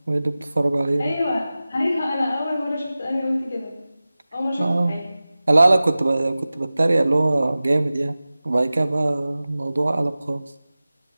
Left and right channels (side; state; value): both; inverted; correlation -0.97